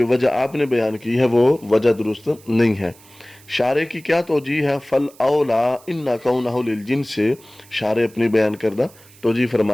وجہ آپ نے بیان کی ہے وہ وجہ درست نہیں ہے۔ شارح کی کیا توجیہ ہے؟ فل اولا ان کونہ للجنس، سے شارح اپنی بیان کردہ توجیہ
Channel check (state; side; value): noise; right; hiss, 25 dB below the sound